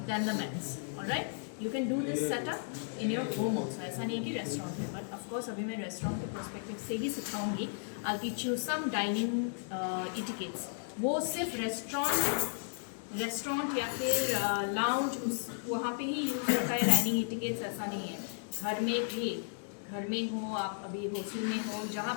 then the mats. All right. You can do this setup in your home also. ऐसा नहीं कि restaurant है, but of course अभी मैं restaurant के perspective से ही सिखाऊंगी. I'll teach you some dining etiquettes. वो सिर्फ रेस्टोरेंट या फिर लाउंज वहाँ पे ही यूज होता है डाइनिंग इटिकेट्स, ऐसा नहीं है. घर में भी, घर में हो आप, अभी हॉस्टल में हो, जहाँ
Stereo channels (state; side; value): silent; right; digital silence